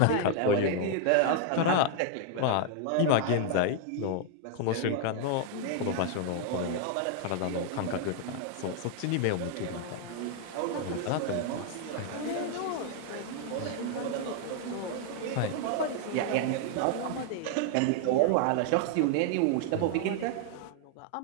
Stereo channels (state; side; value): different; both; correlation 0.00